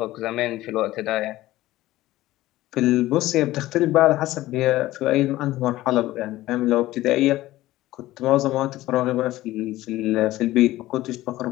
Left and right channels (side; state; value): right; quieter; 16.4 dB